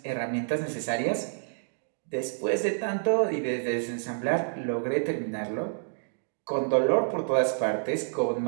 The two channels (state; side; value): silent; left; digital silence